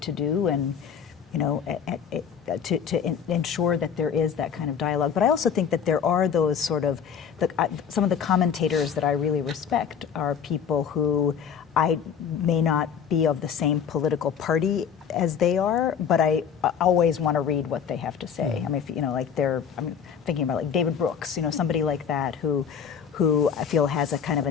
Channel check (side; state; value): right; quieter; 7.5 dB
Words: to do, and to ensure that there is that kind of dialogue. But I also think that there are those sort of, some of the commentators that I really respect are people who I may not be of the same political party as they are, but I always want to read what they have to say. I mean, I'm thinking about like David Brooks, somebody like that who I feel has a kind of